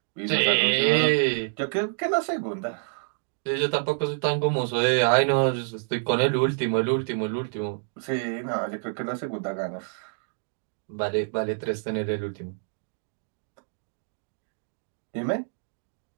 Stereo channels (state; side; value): silent; left; digital silence